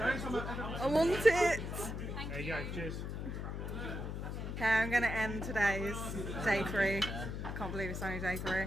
I want it. There you go. Cheers. Okay, I'm going to end today's day 3. I can't believe it's only day 3.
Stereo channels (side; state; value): left; noise; hum, 5 dB below the sound